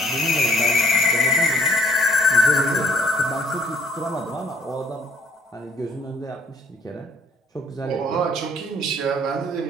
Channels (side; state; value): both; normal; correlation 0.61